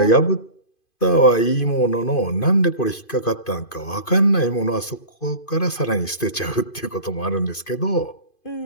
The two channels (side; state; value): right; late; 2.5 ms